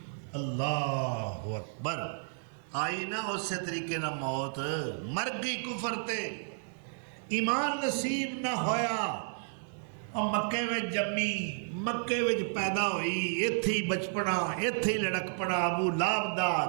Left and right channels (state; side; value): silent; left; 56 dB below the other